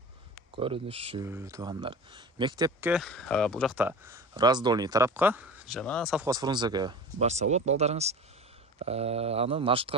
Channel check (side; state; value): both; normal; correlation 0.33